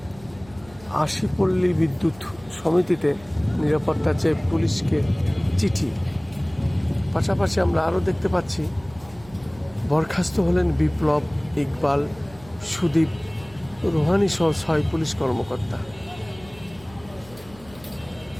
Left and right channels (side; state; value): right; noise; hum, 22 dB below the sound